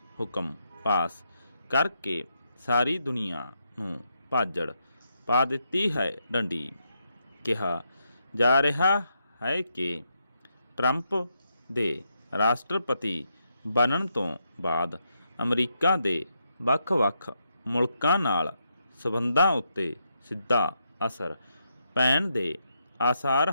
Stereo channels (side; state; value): both; inverted; correlation -0.81